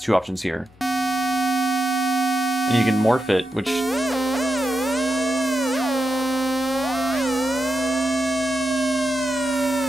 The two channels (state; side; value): normal; both; correlation 0.88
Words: 2 options here. And you can morph it, which...